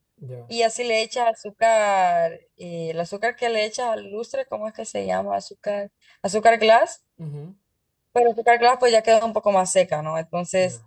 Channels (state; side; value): identical; both; correlation 1.00